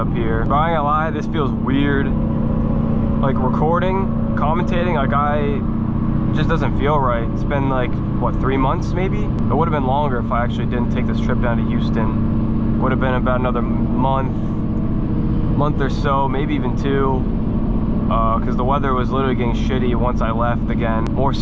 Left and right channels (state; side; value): identical; both; correlation 1.00